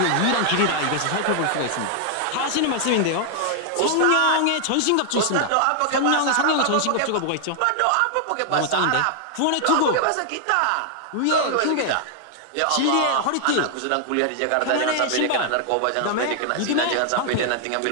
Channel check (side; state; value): both; different; correlation 0.00